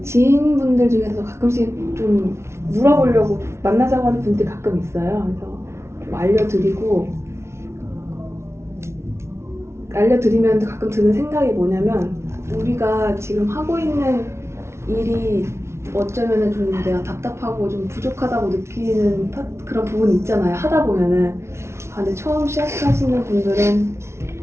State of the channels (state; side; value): late; left; 0.13 ms